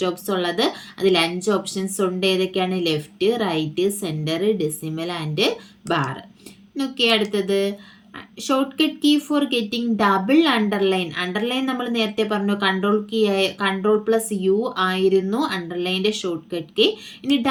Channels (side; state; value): both; identical; correlation 1.00